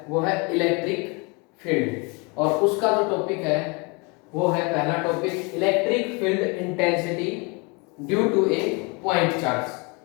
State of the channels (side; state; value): right; quieter; 30.2 dB